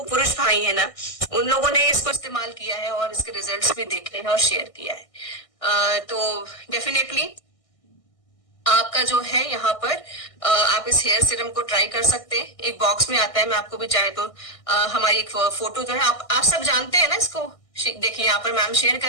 पुरुष भाई है ना, उन लोगों ने इसको इस्तेमाल किया है और इसके रिजल्ट्स भी देखे हैं और शेयर किया है। तो डेफिनेटली आपका जो है यहाँ पर आप इस हेयर सीरम को ट्राई कर सकते हैं। एक बॉक्स में आता है, मैं आपको भी चाहे तो हमारी एक फोटो जो है, आप सब जानते हैं ना इसको। देखिए यहाँ पर मैम शेयर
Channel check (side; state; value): right; late; 1.6 ms